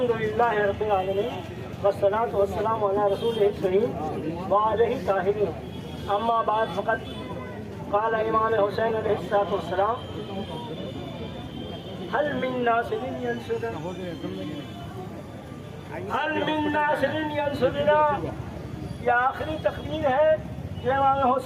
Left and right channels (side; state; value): both; identical; correlation 1.00